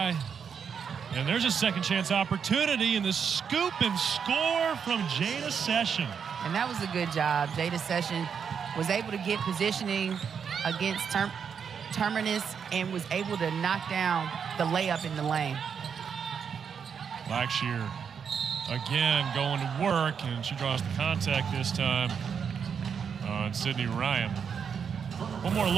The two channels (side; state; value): left; quieter; 6.9 dB